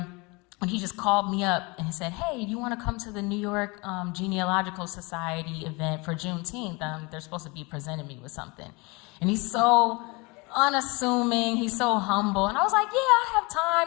when he just called me up and he said, "Hey, do you want to come to the New York Genealogical Society event for Juneteenth? They're supposed to be presenting me with something." And he's so unassuming, he's so humble. And I was like, "Yeah, I have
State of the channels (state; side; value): quieter; right; 27.0 dB